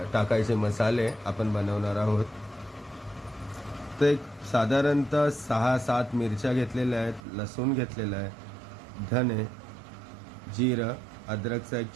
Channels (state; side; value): drops out; left; at 7.2 s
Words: टाकायचे मसाले आपण बनवणार आहोत। तर एक साधारणतः 6-7 मिरच्या घेतलेल्या आहेत, लसूण घेतलेला आहे, धने, जिरं, अद्रकचा एक